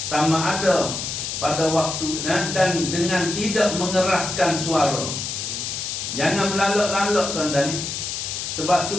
sama ada pada waktu dan dengan tidak mengeraskan suara. Jangan melalak-lalak tuan-tuan ni. Sebab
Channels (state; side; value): noise; left; hiss, 4 dB below the sound